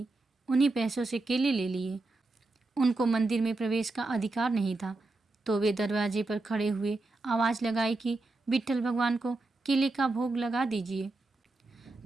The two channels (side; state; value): left; quieter; 3.2 dB